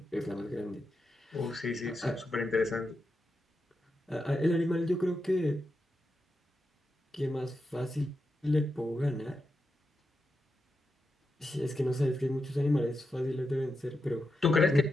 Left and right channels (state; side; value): normal; both; correlation 0.87